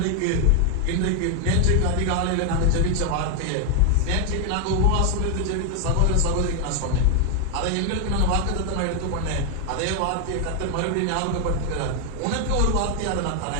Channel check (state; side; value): different; both; correlation 0.00